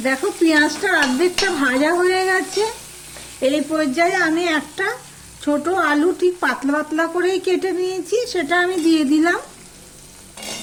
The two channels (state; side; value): identical; both; correlation 1.00